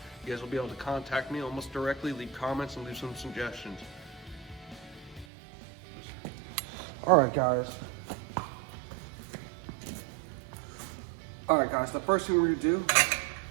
You guys will be able to contact me almost directly, leave comments, and leave some suggestions. Alright guys, the first thing we're going to do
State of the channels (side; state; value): left; drops out; at 5.2 s